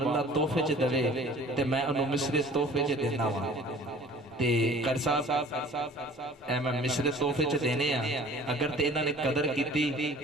اللہ تحفے چ دے تے میں انہوں مصرے تحفے چ دینا وا تے کر صاحب اے میں مصرے تحفے چ دینے ہیں اگر تے انہاں نے قدر کیتی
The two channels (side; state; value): both; normal; correlation 0.48